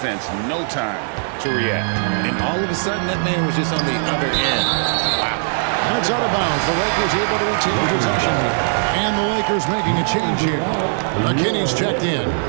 no time to react. And all of a sudden, that man was just on the other end. Wow. And it's out of bounds. The Lakers able to retain possession here. And the Lakers making a change here. McKinney's checked in.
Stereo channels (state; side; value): silent; left; 57 dB below the other